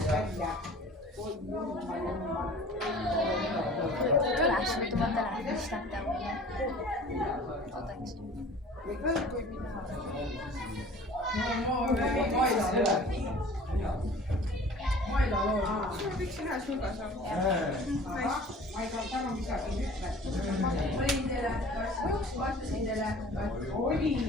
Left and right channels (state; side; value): normal; both; correlation 0.45